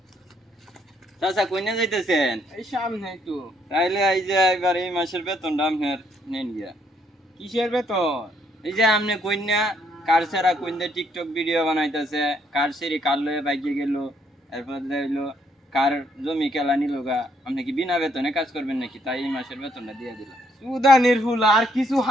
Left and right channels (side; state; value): both; normal; correlation 0.70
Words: চাচা কইনা যাইতেছেন? এই সামনে একটু। তাইলে এই যে এবার এই মাসের বেতনটা আপনার নেন গিয়া। কিসের বেতন? এই যে আপনি কইনা কার ছাড়া কইনা টিকটক ভিডিও বানাইতেছে, কার সেরি কার লয়ে বাইকে গেল, এরপর হইলো কার জমি কেলা নিল গা, আপনি কি বিনা বেতনে কাজ করবেন নাকি? তাই এই মাসের বেতনটা দিয়ে দিলাম। সুদানির ফুল আর কিছু